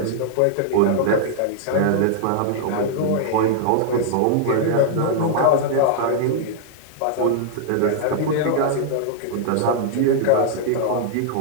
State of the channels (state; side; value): different; both; correlation -0.01